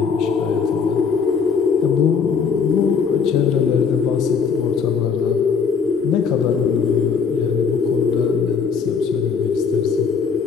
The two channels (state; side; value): quieter; right; 5.9 dB